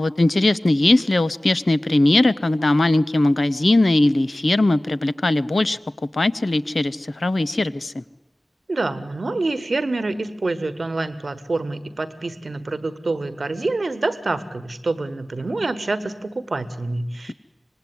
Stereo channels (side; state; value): both; normal; correlation 0.97